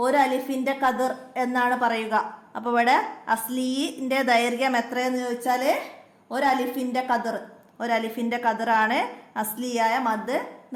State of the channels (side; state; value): both; identical; correlation 1.00